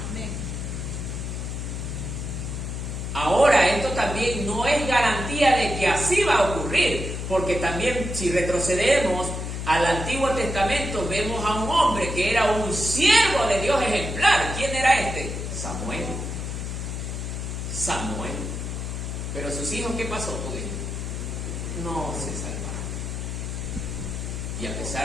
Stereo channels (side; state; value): left; noise; hum, 5 dB below the sound